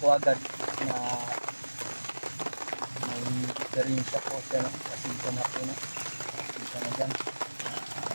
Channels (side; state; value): both; inverted; correlation -1.00